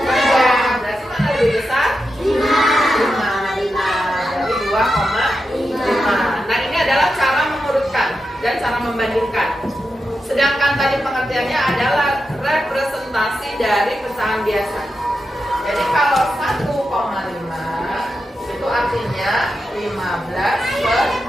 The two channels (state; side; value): normal; both; correlation 0.89